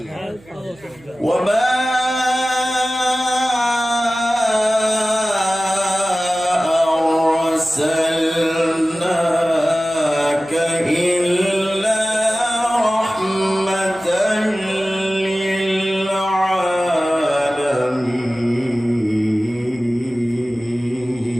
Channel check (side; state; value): right; noise; hum, 26 dB below the sound